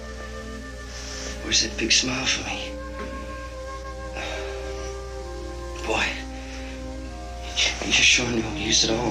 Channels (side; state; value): both; identical; correlation 1.00